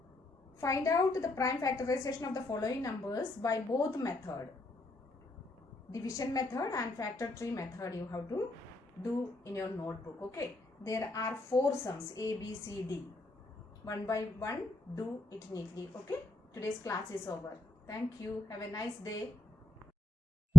Find out the prime factorization of the following numbers by both method. Division method and factor tree method you have to do in your notebook. Okay. There are 4 sums A, B, C, D. One by one, do it neatly. Okay. Today's class is over. Thank you. Have a nice day.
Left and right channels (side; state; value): both; normal; correlation 0.80